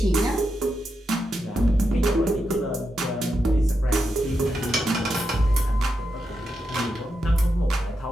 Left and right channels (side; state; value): both; normal; correlation 0.86